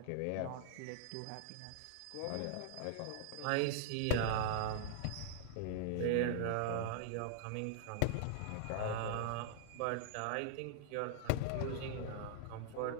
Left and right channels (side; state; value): both; different; correlation -0.01